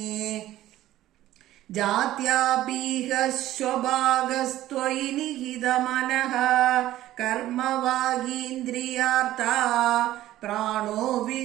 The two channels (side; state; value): left; quieter; 14.4 dB